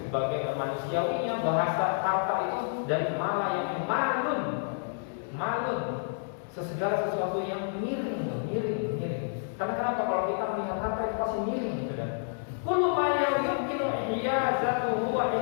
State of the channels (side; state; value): right; silent; digital silence